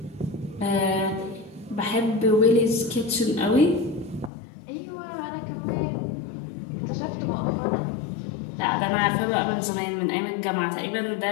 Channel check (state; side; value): drops out; right; at 4.3 s